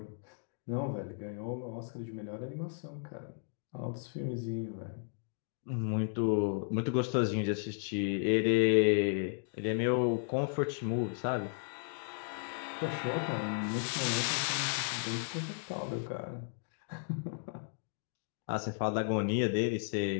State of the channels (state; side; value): silent; right; digital silence